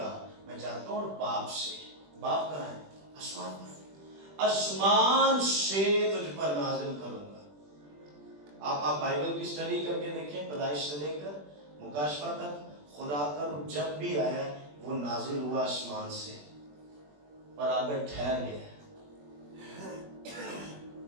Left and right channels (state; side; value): late; left; 20 ms